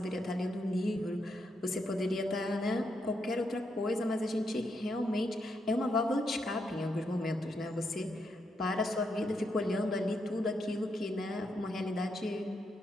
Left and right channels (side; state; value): both; normal; correlation 0.80